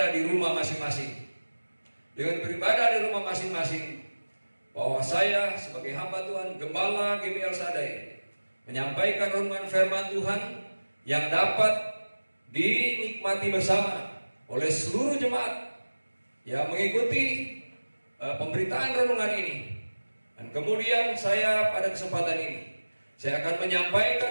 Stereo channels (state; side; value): inverted; both; correlation -1.00